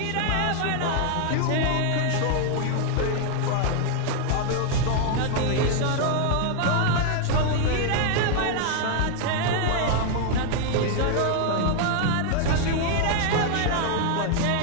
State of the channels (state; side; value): different; both; correlation 0.00